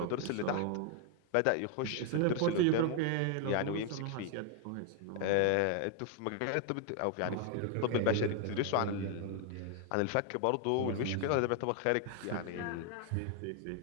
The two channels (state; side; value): different; both; correlation 0.00